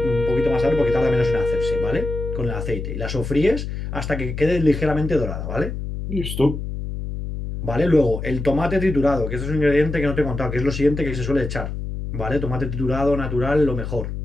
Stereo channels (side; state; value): left; noise; hum, 5 dB below the sound